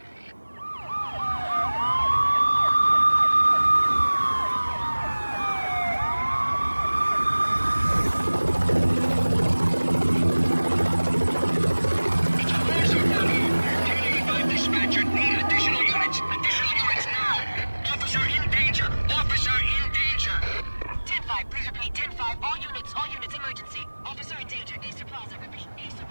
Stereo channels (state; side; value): inverted; both; correlation -1.00